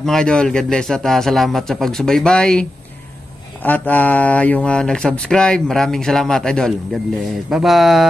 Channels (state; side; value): normal; both; correlation 0.91